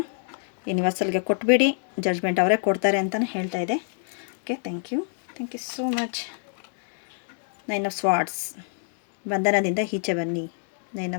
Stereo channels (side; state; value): right; silent; digital silence